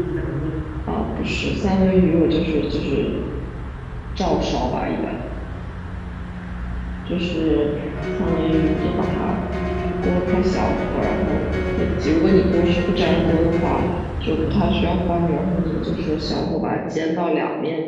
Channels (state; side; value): identical; both; correlation 1.00